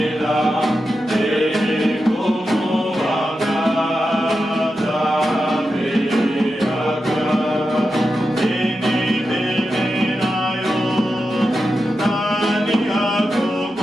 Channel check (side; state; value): both; normal; correlation 0.89